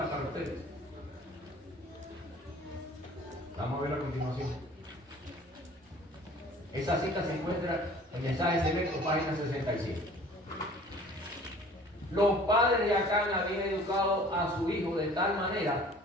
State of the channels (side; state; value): both; normal; correlation 0.49